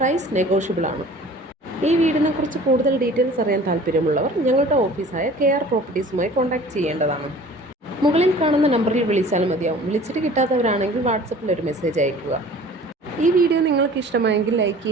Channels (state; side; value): normal; both; correlation 0.46